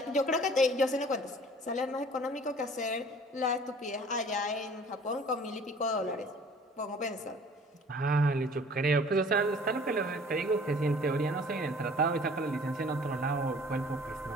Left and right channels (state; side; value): normal; both; correlation 0.50